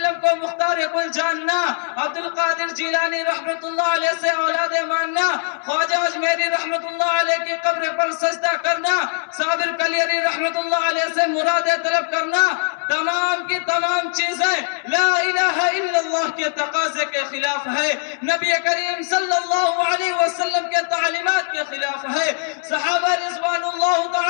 کو مختار کل جاننا، عبد القادر جیلانی رحمت اللہ علیہ سے اولاد ماننا، خواجہ اجمیری رحمت اللہ علیہ کی قبر پر سجدہ کرنا، صابر کلیری رحمت اللہ علیہ سے مرادیں طلب کرنا، تمام کی تمام چیزیں لا الہ الا اللہ کے تقاضے کے خلاف ہے، نبی کریم صلی اللہ علیہ وسلم کے تعلیمات کے خلاف ہے، صحابہ رضوان اللہ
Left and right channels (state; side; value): silent; right; digital silence